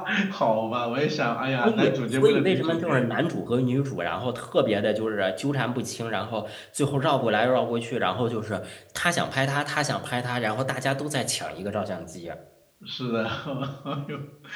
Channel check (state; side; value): identical; both; correlation 1.00